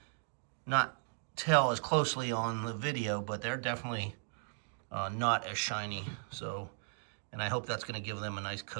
not tell as closely on the video, but they're definitely not as shiny. So, and I hope that's going to give them a nice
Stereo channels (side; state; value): left; silent; digital silence